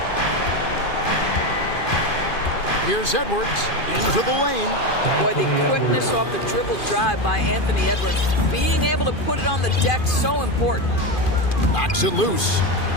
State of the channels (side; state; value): right; late; 2.4 ms